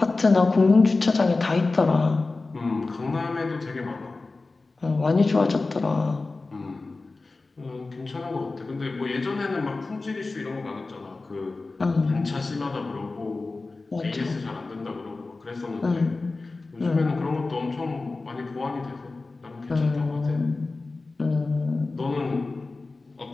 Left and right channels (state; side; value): quieter; right; 3.5 dB